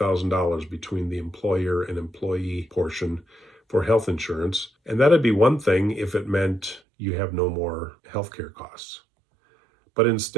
between the employer and employee portion for health insurance. And that'd be one thing if it meant you have no more healthcare costs. But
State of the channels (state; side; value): drops out; left; at 6.8 s